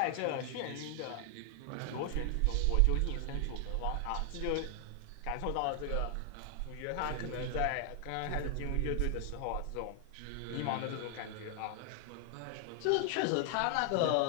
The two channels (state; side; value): different; both; correlation 0.00